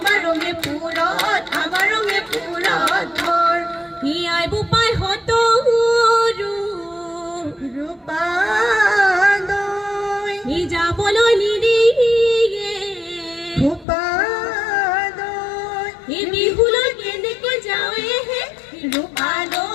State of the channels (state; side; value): drops out; right; at 13.9 s